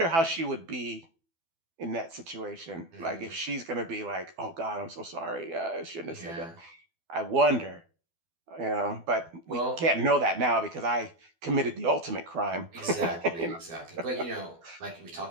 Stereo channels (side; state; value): left; late; 12 ms